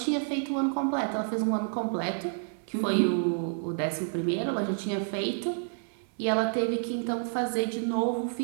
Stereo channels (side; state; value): left; silent; 58 dB below the other